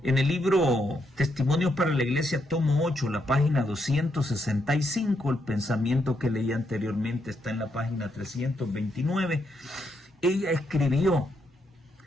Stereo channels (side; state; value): both; normal; correlation 0.78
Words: En el libro Testimonios para la Iglesia, tomo 8, la página 265, el pensamiento que leí anteriormente está en la página 329, ella escribió: